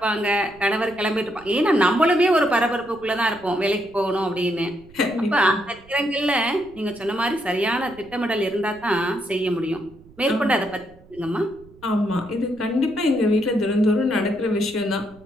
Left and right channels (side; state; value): right; noise; rumble, 25 dB below the sound